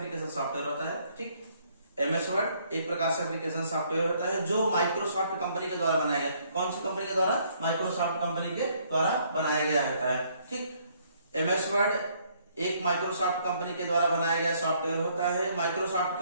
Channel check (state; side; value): inverted; both; correlation -0.66